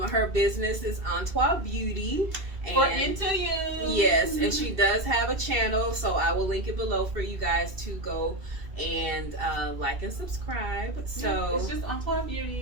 business is Loc Beauty. And into you. Yes, and she does have a channel, so I will link it below for you guys to go and like and subscribe. So it's just Loc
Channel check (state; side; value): late; left; 2.7 ms